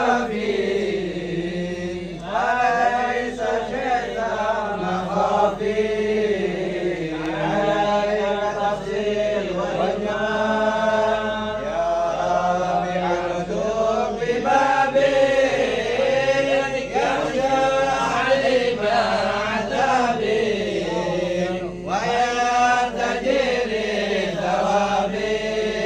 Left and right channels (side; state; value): both; identical; correlation 1.00